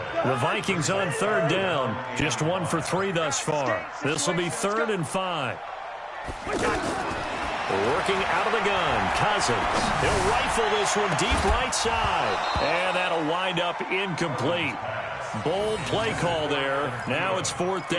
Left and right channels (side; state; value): both; identical; correlation 1.00